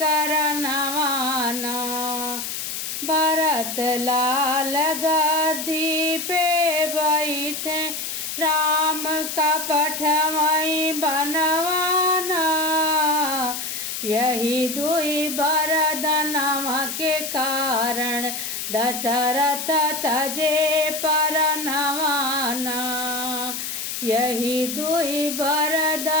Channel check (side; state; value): left; noise; hiss, 5 dB below the sound